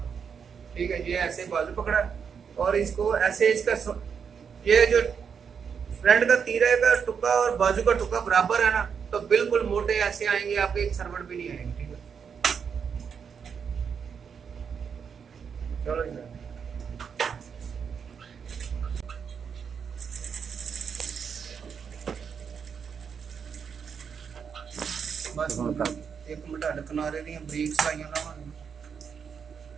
ठीक है, ये ऐसे बाजू पकड़ा और इसको ऐसे, इसका ये जो फ्रंट का तीरे का टुक्का और बाजू का टुक्का बराबर है ना, तो बिल्कुल मोटे ऐसे आएंगे, आपके एक सरवट भी नहीं आएंगे, ठीक है। चलो इधर बस एक मिनट हट किनारे दी बरीक सलाइयां लावांगे।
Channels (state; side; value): quieter; left; 6.7 dB